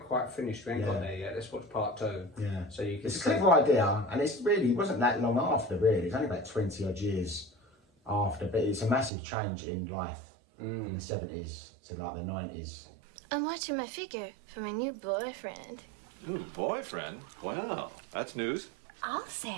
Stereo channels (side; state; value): left; drops out; at 9.1 s